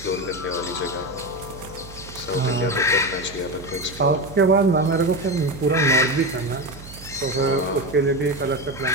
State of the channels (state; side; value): noise; right; hum, 16 dB below the sound